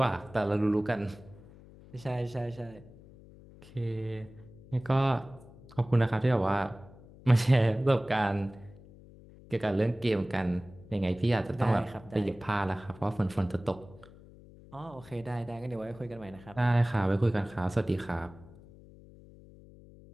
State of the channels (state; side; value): noise; left; hum, 21 dB below the sound